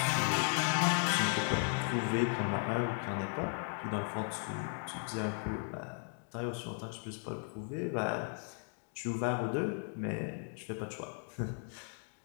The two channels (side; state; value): right; silent; 54 dB below the other